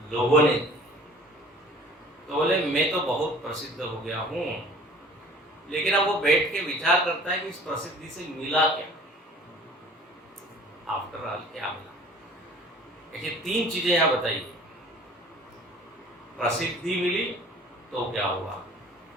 लोगों ने। तो बोले मैं तो बहुत प्रसिद्ध हो गया हूँ, लेकिन अब वो बैठ के विचार करता है कि इस प्रसिद्धि से मिला क्या, आफ्टर ऑल क्या मिला। ऐसी तीन चीजें यहाँ बताइए। प्रसिद्धि मिली तो क्या हुआ?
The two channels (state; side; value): normal; both; correlation 0.48